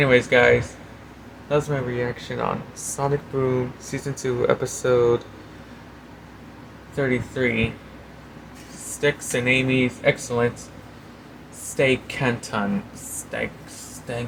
guys, that was my reaction on Sonic Boom Season 2, Episode 33. Sticks and Amy's excellent staycation.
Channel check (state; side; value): identical; both; correlation 1.00